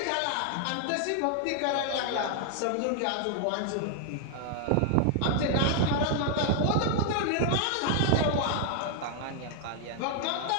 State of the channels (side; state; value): both; different; correlation 0.00